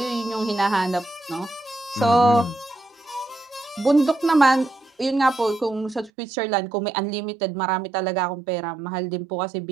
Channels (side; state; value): left; drops out; at 6.1 s